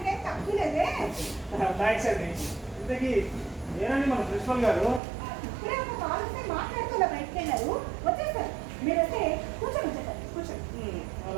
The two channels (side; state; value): left; drops out; at 5.0 s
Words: తక్కువ లేదే. థ్యాంక్స్ అండి. ఇంతకీ నేనండి మన ప్రిన్సిపల్ గారు. ఇప్పుడే ఒక కాల్ వస్తే మాట్లాడుతూ బయటకు వెళ్ళారు, వచ్చేసారు. మీరు వస్తే కూర్చొని వచ్చేసారు, కూర్చోండి.